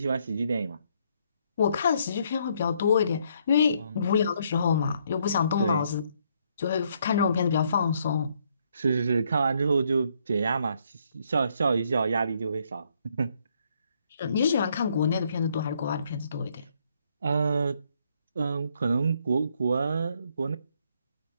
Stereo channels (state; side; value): inverted; both; correlation -0.71